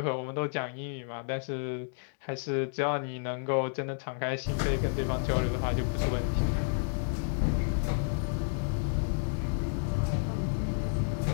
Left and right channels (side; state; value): right; silent; digital silence